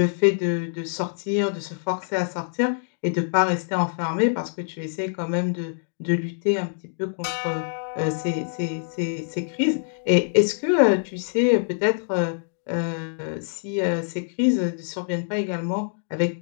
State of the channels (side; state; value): right; silent; digital silence